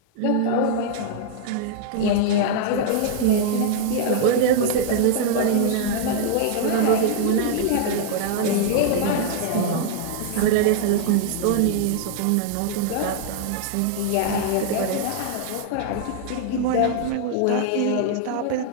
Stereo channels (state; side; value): different; both; correlation 0.00